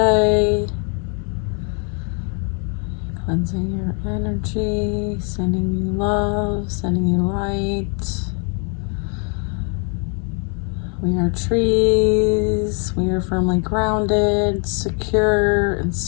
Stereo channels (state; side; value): quieter; right; 38.5 dB